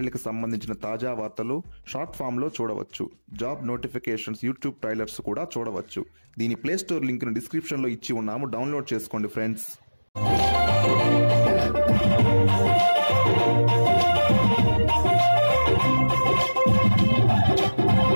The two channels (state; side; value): inverted; both; correlation -1.00